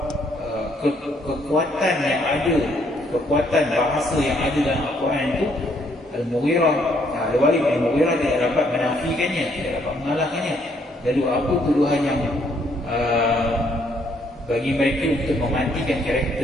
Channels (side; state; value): both; normal; correlation 0.69